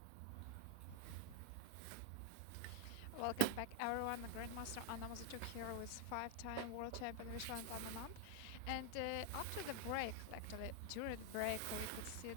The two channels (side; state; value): both; different; correlation 0.00